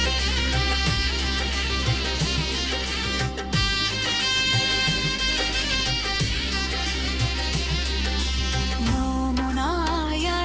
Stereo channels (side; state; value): both; identical; correlation 1.00